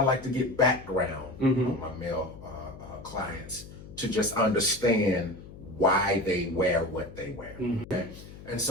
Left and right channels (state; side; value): noise; left; hum, 16 dB below the sound